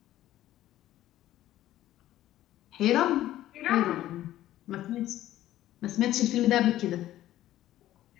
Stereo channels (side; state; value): right; quieter; 13.8 dB